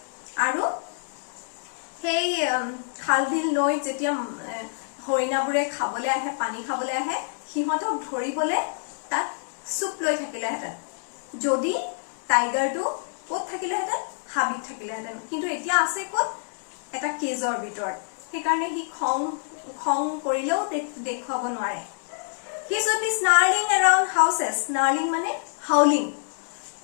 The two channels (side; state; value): right; silent; digital silence